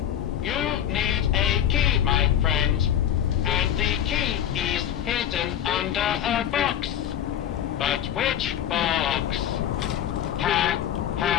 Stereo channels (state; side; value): quieter; right; 10.4 dB